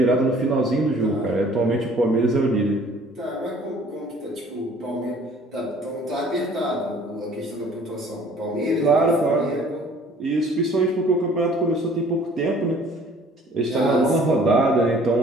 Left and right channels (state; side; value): normal; both; correlation 0.54